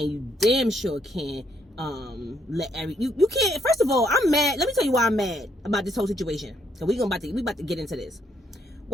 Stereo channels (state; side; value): normal; both; correlation 0.72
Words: you damn sure can't you can't. First of all, I'm mad. Let me tell you why I'm mad about this whole situation. So we about to get into this.